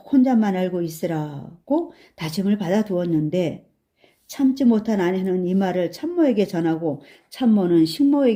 혼자만 알고 있으라고 다짐을 받아두었는데 참지 못한 아내는 이 말을 참모에게 전하고 참모는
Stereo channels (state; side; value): identical; both; correlation 1.00